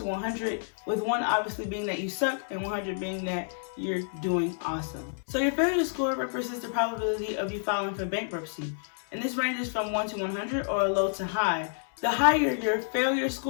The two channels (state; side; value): silent; right; 58 dB below the other